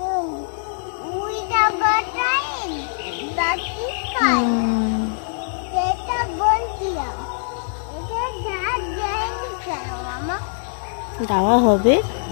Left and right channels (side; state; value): right; silent; 56 dB below the other